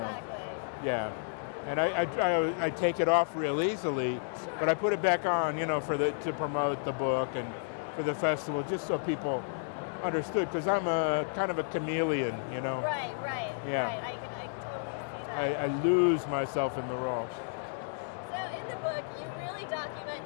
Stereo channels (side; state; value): right; silent; digital silence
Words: Yeah. And I take it off real easily, but I put it back on, you know, to promote the book and for the festival, just so people understood, because I'm a kind of a chameleon, you know. Right. I can totally see that. I lose myself in the role. So in the book, you really document